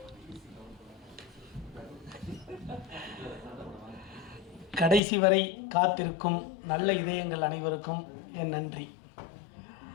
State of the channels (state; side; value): drops out; right; at 5.0 s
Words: கடைசி வரை காத்திருக்கும் நல்ல இதயங்கள் அனைவருக்கும் என் நன்றி.